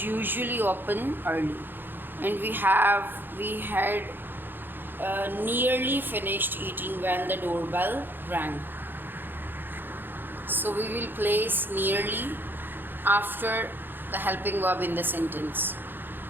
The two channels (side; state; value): left; late; 0.097 ms